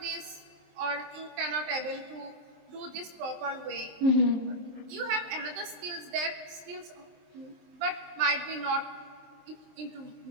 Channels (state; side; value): late; left; 23 ms